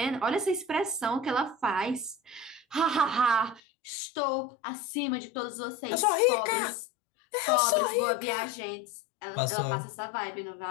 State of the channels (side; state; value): right; drops out; at 3.6 s